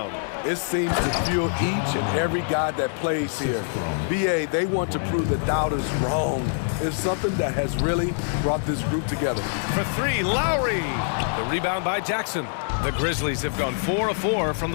It seems to fuel each and every guy that plays here. BA, they want to prove the doubters wrong. It's something that has really brought this group together. For three, Lowry. The rebound by Jackson. The Grizzlies have gone 4 of 4 from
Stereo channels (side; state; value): right; silent; 62 dB below the other